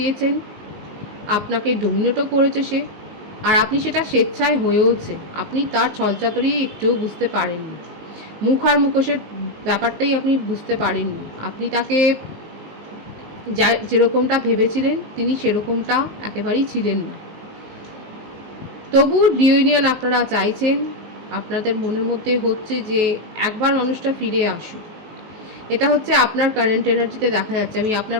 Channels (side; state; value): left; late; 19 ms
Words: আপনাকে ডোমিনেটও করেছে সে, আর আপনি সেটা স্বেচ্ছায় হয়েওছে, আপনি তার ছলচাতুরি একটুও বুঝতে পারেননি। মুখ আর মুখোশের ব্যাপারটাই আপনি বুঝতে পারেননি। আপনি তাকে যেরকমটা ভেবেছিলেন তিনি সেরকমটা একেবারেই ছিলেন না। তবু রিউনিয়ন আপনারা চাইছেন, আপনাদের মনের মধ্যে হচ্ছে যে একবার মানুষটা ফিরে আসুক। এটা হচ্ছে আপনার কারেন্ট এনার্জিতে দেখা যাচ্ছে। আমি আপনার